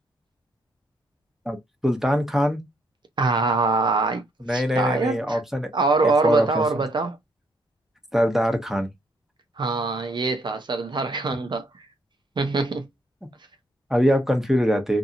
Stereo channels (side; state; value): both; normal; correlation 0.72